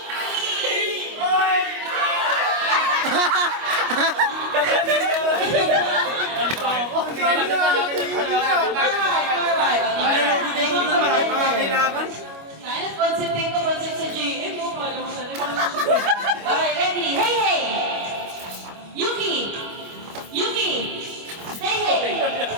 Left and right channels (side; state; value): left; late; 25 ms